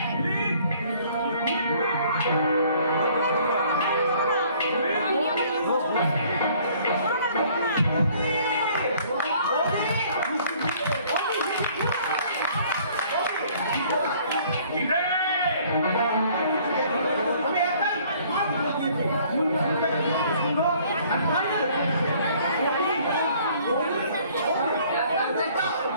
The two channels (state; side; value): inverted; both; correlation -0.58